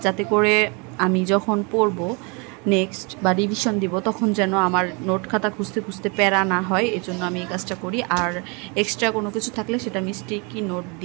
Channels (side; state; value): left; quieter; 31.6 dB